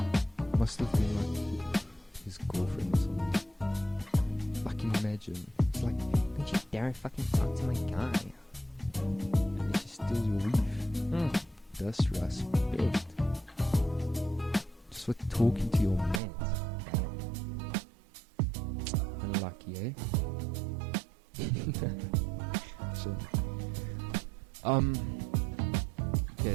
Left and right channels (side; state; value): left; drops out; at 16.2 s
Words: Must have been like his girlfriend or something. Like, imagine. It's like, don't you dare fucking talk to my guy. And then she steals your weave. Disrespect. Just for talking to your man. Damn. Unlucky, eh? So,